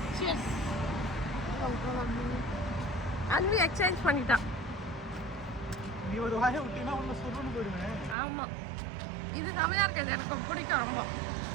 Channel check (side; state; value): left; drops out; at 8.2 s